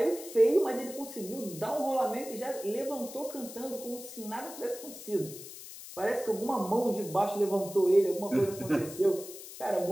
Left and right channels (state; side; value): noise; left; hiss, 13 dB below the sound